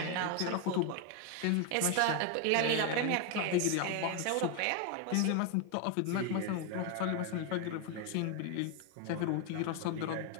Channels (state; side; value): different; both; correlation 0.01